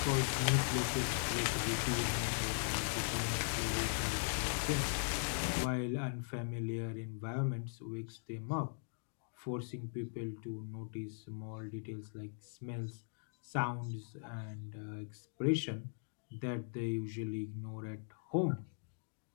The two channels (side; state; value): right; silent; digital silence